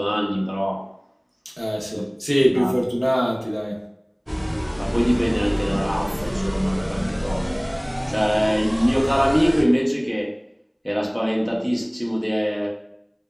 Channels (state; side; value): identical; both; correlation 1.00